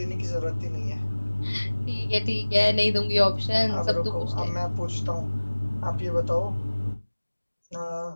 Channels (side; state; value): both; inverted; correlation -1.00